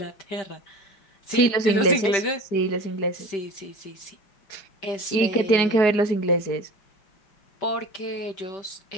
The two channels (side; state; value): right; late; 5.1 ms